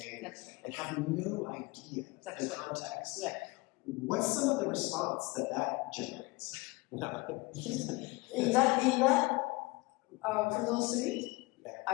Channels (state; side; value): quieter; right; 23.6 dB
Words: and have no idea the context. Right. What's some of the response that generates? in that for those three,